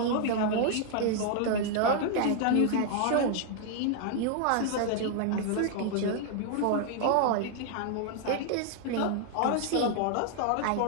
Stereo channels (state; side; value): different; both; correlation 0.00